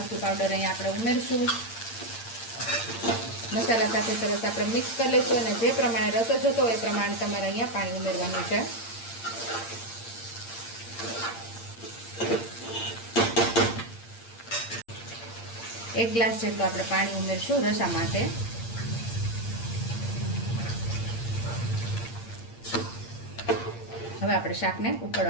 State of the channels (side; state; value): right; late; 8.7 ms